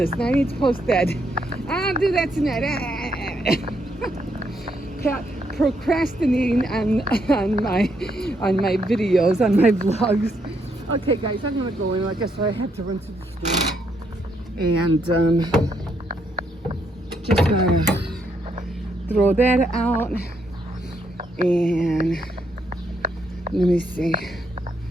and I need to post that. I'll do that tonight. Procrastinating on my videos, on my vlogs. Okay, guys, I'm gonna go in. Like I said, I had to run to the store, and just gonna throw that out. And let me see.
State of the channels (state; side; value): normal; both; correlation 0.75